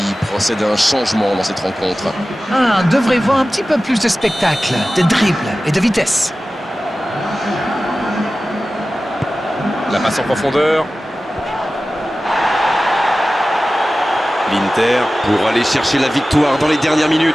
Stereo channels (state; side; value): normal; both; correlation 0.96